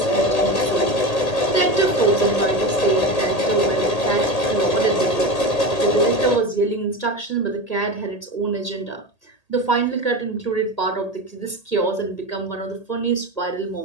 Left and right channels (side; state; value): right; late; 1.8 ms